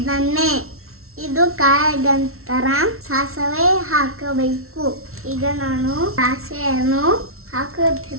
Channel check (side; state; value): left; late; 0.62 ms